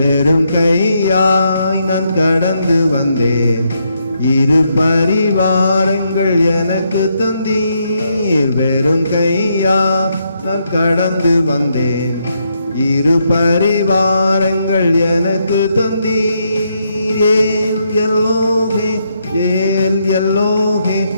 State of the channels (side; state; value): both; inverted; correlation -0.78